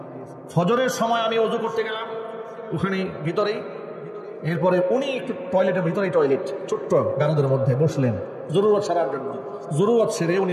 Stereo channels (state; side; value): identical; both; correlation 1.00